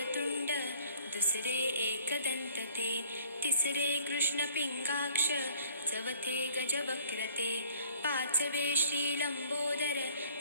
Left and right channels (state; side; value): inverted; both; correlation -0.55